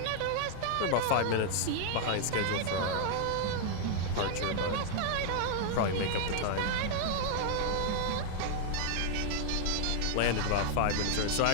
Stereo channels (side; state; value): both; different; correlation -0.01